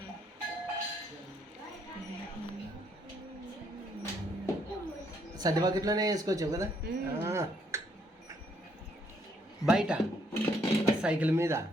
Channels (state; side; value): normal; both; correlation 0.71